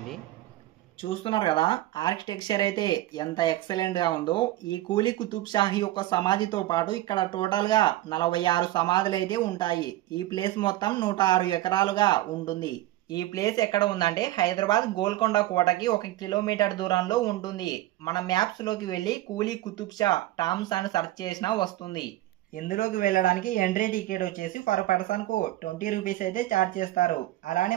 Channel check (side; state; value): left; quieter; 15.8 dB